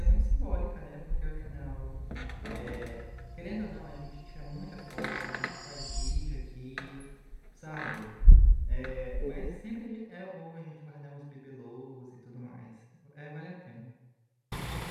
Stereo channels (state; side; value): identical; both; correlation 1.00